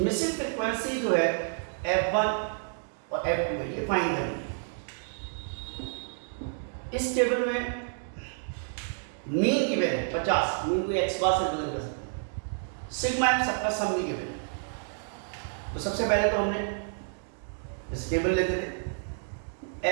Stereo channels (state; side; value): silent; left; digital silence